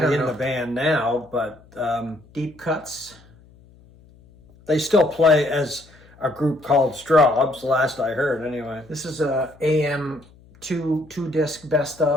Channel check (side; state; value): left; noise; hum, 26 dB below the sound